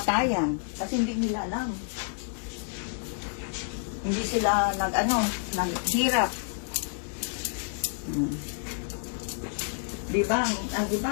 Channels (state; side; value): silent; right; digital silence